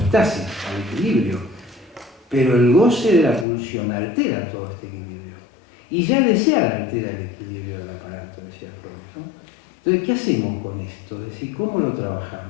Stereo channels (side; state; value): right; drops out; at 3.5 s